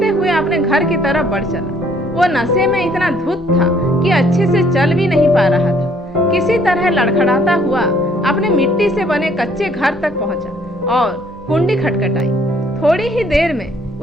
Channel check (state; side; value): normal; both; correlation 0.62